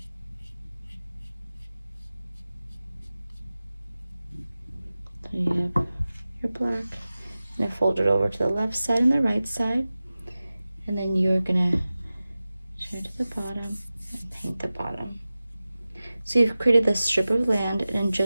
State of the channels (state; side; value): inverted; both; correlation -0.96